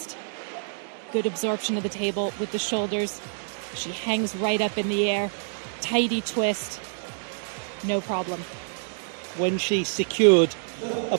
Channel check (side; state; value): left; silent; digital silence